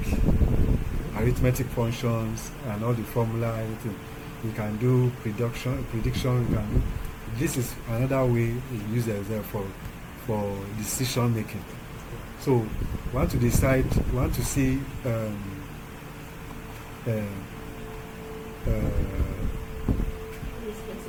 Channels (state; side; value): identical; both; correlation 1.00